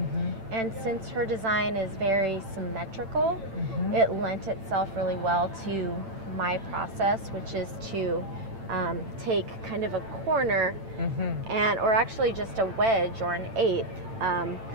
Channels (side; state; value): left; late; 8.9 ms